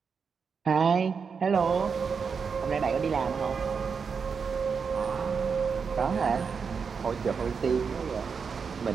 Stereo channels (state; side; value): quieter; left; 5.8 dB